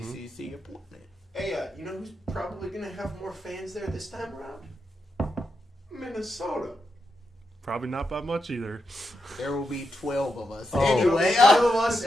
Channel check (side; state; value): both; normal; correlation 0.85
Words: ACC appointment. Hey, you know who's probably going to have more fans there this time around? Minnesota. Probably not by much either. There will be 12 of us. Oh. Anyway, 5 of us